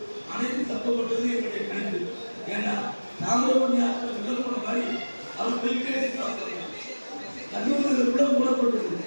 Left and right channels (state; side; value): inverted; both; correlation -1.00